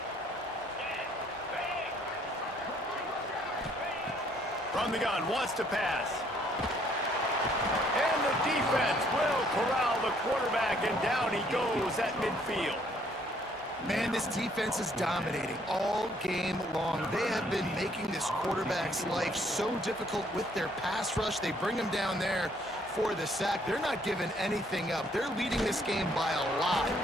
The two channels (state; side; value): normal; both; correlation 0.65